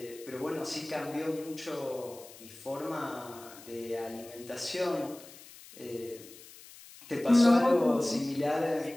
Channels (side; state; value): left; noise; hiss, 19 dB below the sound